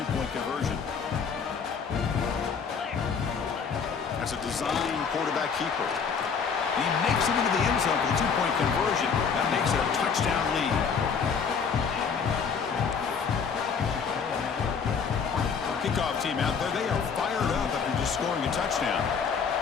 conversion. That's a design quarterback keeper. He makes it into the end zone for the two-point conversion. That makes it a touchdown lead. Kickoff team out there. They are fired up after just scoring a touchdown.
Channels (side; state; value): right; quieter; 6.1 dB